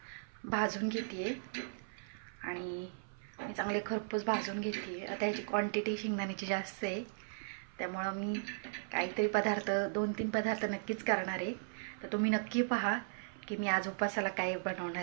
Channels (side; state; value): left; silent; 53 dB below the other